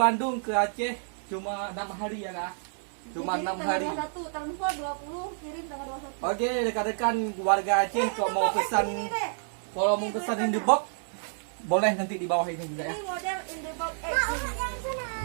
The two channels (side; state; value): left; silent; 58 dB below the other